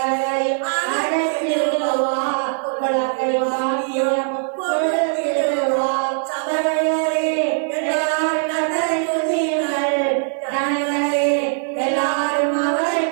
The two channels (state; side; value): silent; left; 55 dB below the other